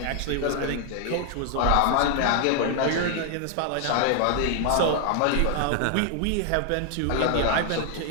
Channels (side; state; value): both; different; correlation 0.00